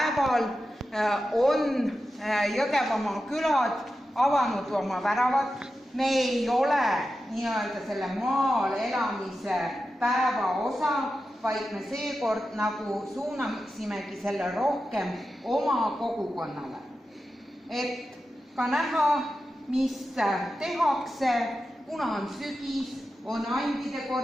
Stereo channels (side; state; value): both; normal; correlation 0.91